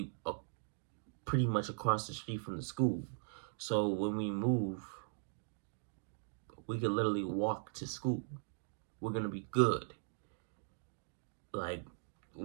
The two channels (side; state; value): left; silent; digital silence